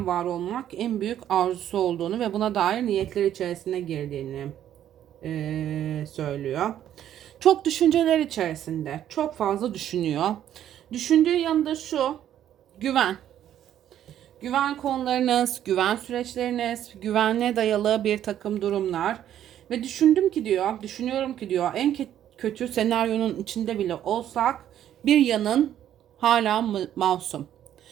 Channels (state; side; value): quieter; left; 11.0 dB